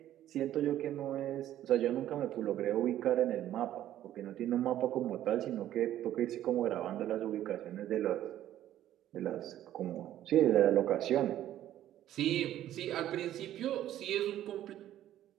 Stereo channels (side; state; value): left; quieter; 12.4 dB